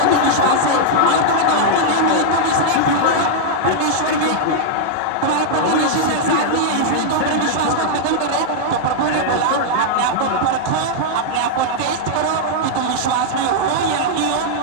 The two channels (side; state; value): both; different; correlation -0.01